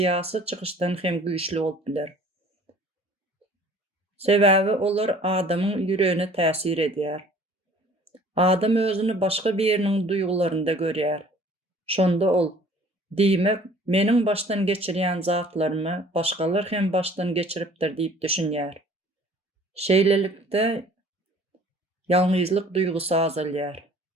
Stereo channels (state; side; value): normal; both; correlation 0.52